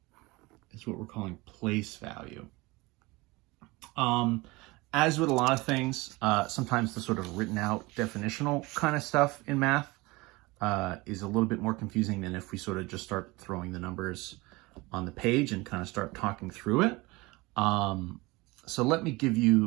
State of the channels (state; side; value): quieter; left; 22.9 dB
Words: is what we're calling place value. As with a lot of things, sometimes the sort of written out definitional kind of stuff in math is a little bit more confusing than if we sort of just start throwing the numbers on the page and kind of start talking through it. So let me give